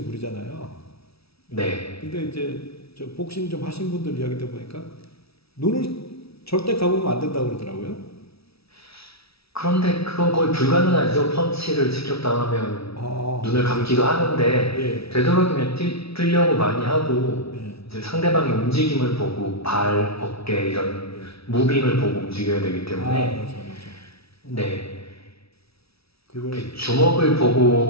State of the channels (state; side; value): late; right; 0.77 ms